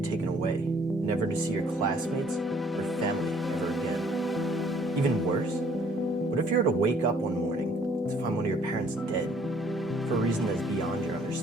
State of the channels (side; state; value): both; normal; correlation 0.61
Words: taken away, never to see your classmates or family ever again. Even worse, what if you were to wake up one morning to find one of your parents dead for a reason that is beyond your